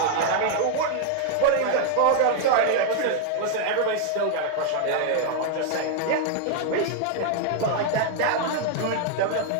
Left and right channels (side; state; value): both; different; correlation 0.00